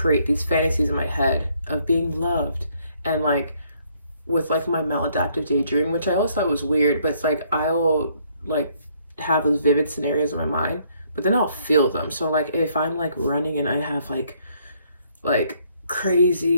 these fantasies in my head of being loved, and like with like my maladaptive daydream, which I always thought was weird, but it's like I will like have those vivid scenarios in my mind, but then I'll feel them. So like if I'm like running and I have like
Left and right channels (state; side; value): inverted; both; correlation -0.68